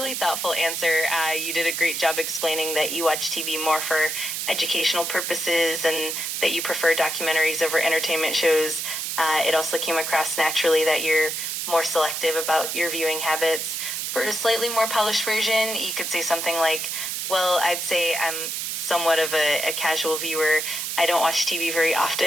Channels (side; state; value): right; noise; hiss, 3 dB below the sound